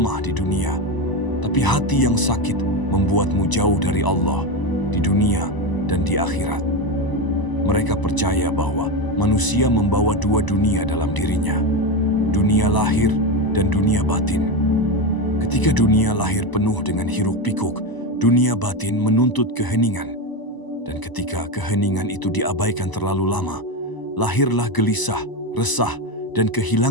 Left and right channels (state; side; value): late; right; 1.0 ms